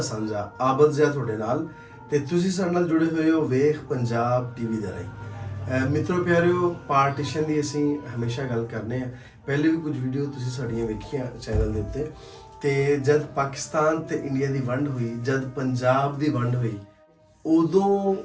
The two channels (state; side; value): identical; both; correlation 1.00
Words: ਸਾਂਝਾ ਆਬਦ ਜ਼ਿਆ ਤੁਹਾਡੇ ਨਾਲ ਤੇ ਤੁਸੀਂ ਸਾਡੇ ਨਾਲ ਜੁੜੇ ਹੋਏ ਹੋ ਵੇਖ ਪੰਜਾਬ ਟੀਵੀ ਦੇ ਰਾਹੀਂ ਮਿੱਤਰੋ ਪਿਆਰਿਓ ਪਾਰਟੀਸ਼ਨ ਦੀ ਅਸੀਂ ਹਮੇਸ਼ਾ ਗੱਲ ਕਰਨੇ ਆ ਪਹਿਲੇ ਵੀ ਕੁਝ ਵੀਡੀਓ ਤੁਸੀਂ ਸਾਡੀਆਂ ਵੇਖੀਆਂ ਚੈਨਲ ਦੇ ਉੱਤੇ ਤੇ ਜਦ ਪਾਕਿਸਤਾਨ ਤੇ ਇੰਡੀਆ ਦੀ ਵੰਡ ਹੋਈ ਜਦ ਪੰਜਾਬ ਦੀ ਵੰਡ ਹੋਈ ਉਦੋਂ